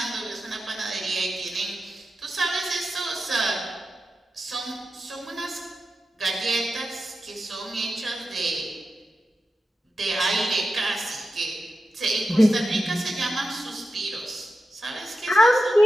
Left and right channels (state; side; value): normal; both; correlation 0.91